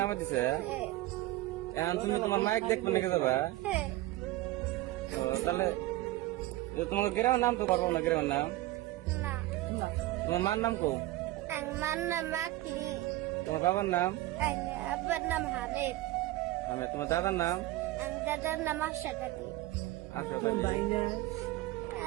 নামে দিছে। হ্যাঁ, এখন তুমি তোমার মাইক দেখবে নাকি যাবা? হ্যাঁ। ও, তাহলে তোমাকে গ্রামের নাম তো পারবো না, গ্রামের নাম। না, তোমার মার নাম কো? আমার নাম আকলি। তোমার বাবার নাম? আব্বার নাম হামিদ। তোমার দাদার নাম? দাদার নাম আশাদ আলী। আশাদ আলী।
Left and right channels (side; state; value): left; quieter; 17.2 dB